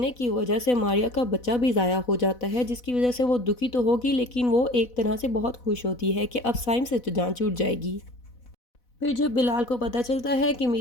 की वजह से मारिया का बच्चा भी ज़ाया हो जाता है, जिसकी वजह से वो दुखी तो होगी लेकिन वो एक तरह से बहुत खुश होती है कि अब साइम से तो जान छूट जाएगी। फिर जब बिलाल को पता चलता है कि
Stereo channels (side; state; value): right; late; 4.0 ms